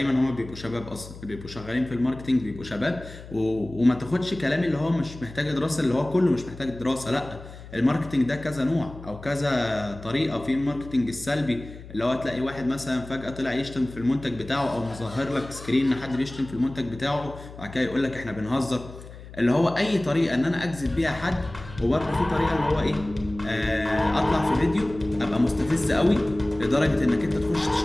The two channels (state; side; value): noise; left; hum, 15 dB below the sound